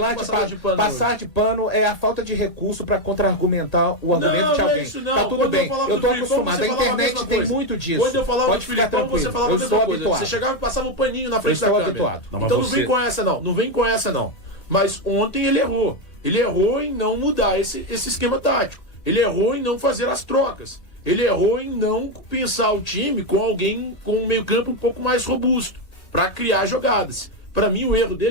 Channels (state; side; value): late; right; 1.7 ms